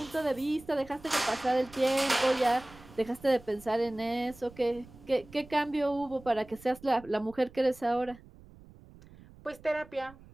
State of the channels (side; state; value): right; noise; rumble, 21 dB below the sound